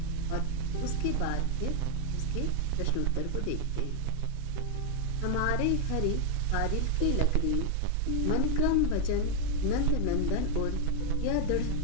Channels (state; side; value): different; both; correlation 0.00